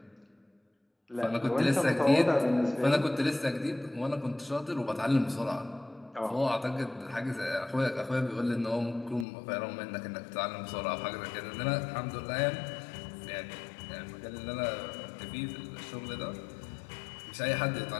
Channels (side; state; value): right; drops out; at 9.2 s